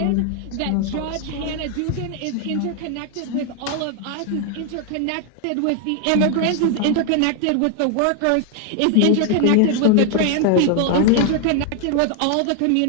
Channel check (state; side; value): different; both; correlation 0.00